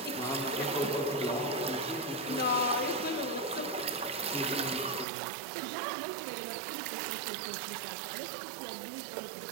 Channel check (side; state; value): left; drops out; at 5.1 s